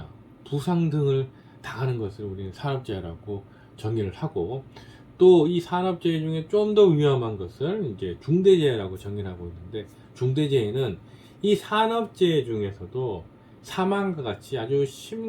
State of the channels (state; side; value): identical; both; correlation 1.00